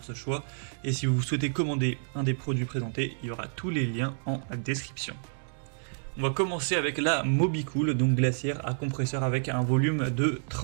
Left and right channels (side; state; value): left; silent; digital silence